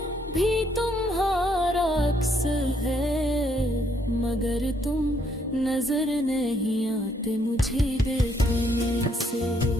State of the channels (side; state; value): both; normal; correlation 0.70